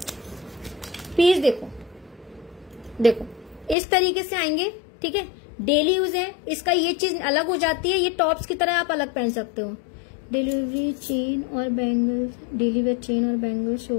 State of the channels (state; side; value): drops out; right; at 3.8 s